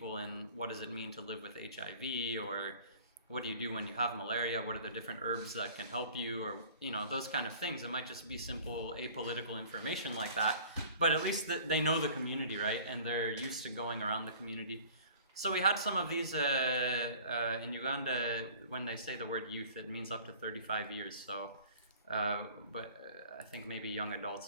in what does it mean to live with HIV, or what do you do when you have malaria, what are the different herbs that can help you, or, you know, those kind of things. It might just be simple apolitical information like that, but at least they know the community, right? And they're used to going around the community. So we had some of these in Uganda. When they say the word youth, it means up to 35 years. So, but I think maybe young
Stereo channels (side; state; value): both; inverted; correlation -0.48